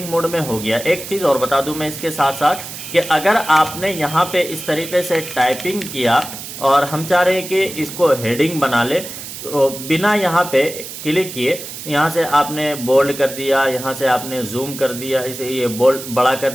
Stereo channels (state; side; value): noise; right; hiss, 10 dB below the sound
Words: मोड में हो गया। एक चीज़ और बता दूं मैं इसके साथ साथ कि अगर आपने यहाँ पे इस तरीके से टाइपिंग किया और हम चाह रहे हैं कि इसको हेडिंग बना ले, तो बिना यहाँ पे क्लिक किए यहाँ से आपने बोल्ड कर दिया, यहाँ से आपने जूम कर दिया, इसे ये बोल्ड बड़ा कर